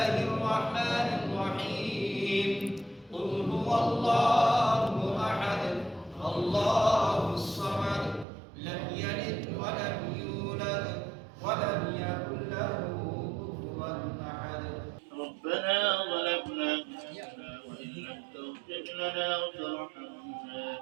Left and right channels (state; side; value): drops out; left; at 8.2 s